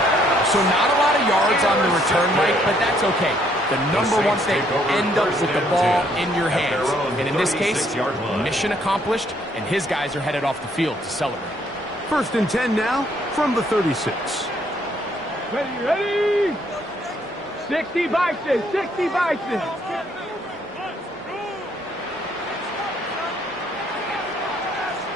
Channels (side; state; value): both; normal; correlation 0.68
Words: So not a lot of yards on the return, Mike, but that's okay. The number one thing, end up with the ball in your hands. And in this case, mission accomplished, and his guys are headed off the field to celebrate. 1st and 10 now from the 36. Ready? 60 Bison, 60 Bison.